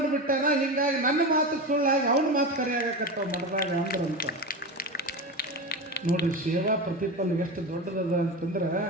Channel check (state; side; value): normal; both; correlation 0.22